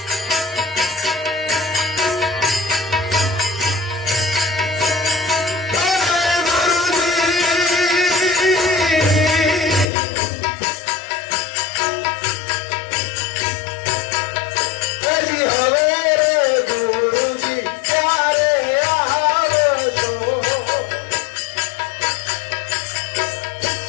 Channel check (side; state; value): right; drops out; at 9.9 s